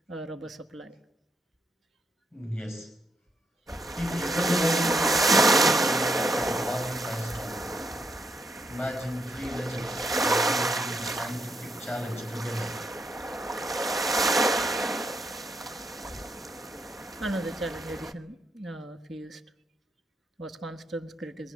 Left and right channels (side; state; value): both; normal; correlation 0.78